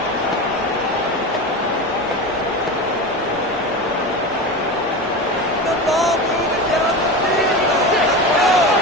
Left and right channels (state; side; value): normal; both; correlation 0.25